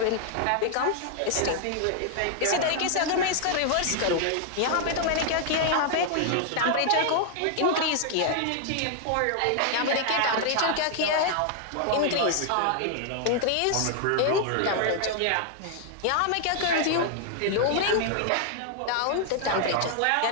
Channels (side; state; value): both; different; correlation 0.00